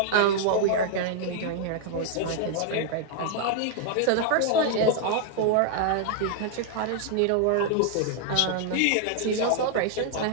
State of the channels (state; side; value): different; both; correlation 0.00